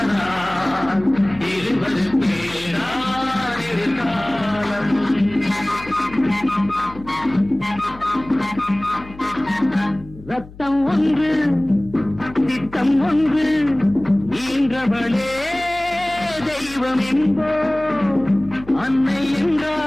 இருவருக்கேதான் இரு காலம். ரத்தம் ஒன்று சித்தம் ஒன்று ஈன்றவளே தெய்வம் என்போ. அன்னை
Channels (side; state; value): left; noise; hum, 18 dB below the sound